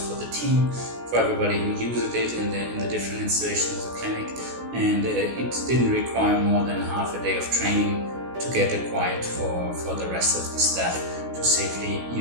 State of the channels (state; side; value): late; left; 16 ms